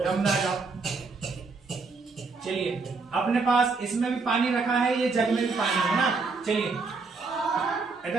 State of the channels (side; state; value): left; quieter; 4.2 dB